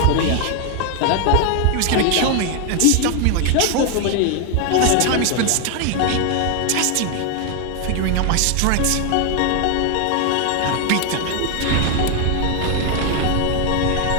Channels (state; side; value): different; both; correlation 0.00